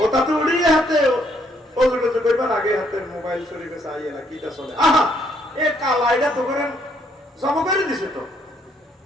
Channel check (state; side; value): normal; both; correlation 0.70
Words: ওটা তো উড়িয়ে হাতে ওজুটা তো কইবার আগে হাতে মোবাইল শরীফে চাইয়ে না কিটা চলে আহা এ কালাইটা তো করেন জব করে দিছে তো